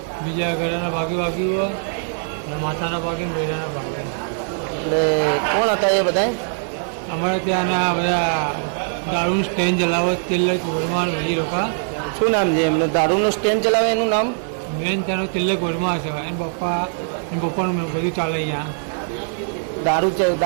બીજા ગળાના ભાગે વાગ્યું અને માથાના ભાગે ને બૈરાના ભાગે. એટલે કોણ હતા એ બધા? અમારે ત્યાંના બધા દારૂનું સ્ટેન્ડ ચલાવો તિલક વર્મા બધી લોકો. શું નામ છે એમને? દારૂનું સ્ટેન્ડ ચલાવે એનું નામ? મેન ત્યાંનો તિલક વર્મા છે. એના પપ્પાનું બધું ચાલે અહીંયા.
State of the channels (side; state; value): left; silent; 65 dB below the other